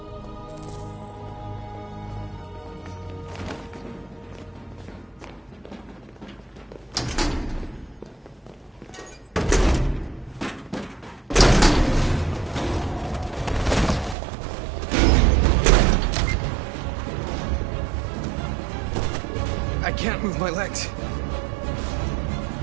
I can't move my legs.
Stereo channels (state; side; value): drops out; left; at 14.2 s